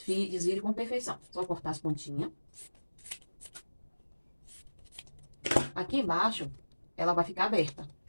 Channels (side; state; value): both; inverted; correlation -1.00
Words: com perfeição. Só cortar as pontinhas. Aqui embaixo, ela vai ficar aberta.